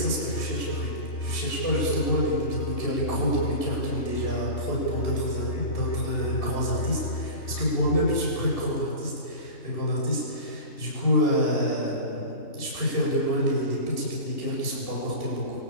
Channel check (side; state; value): right; late; 2.7 ms